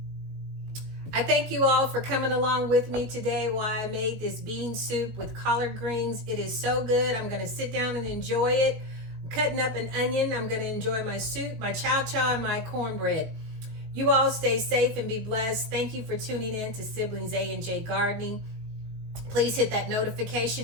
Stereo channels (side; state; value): left; late; 19 ms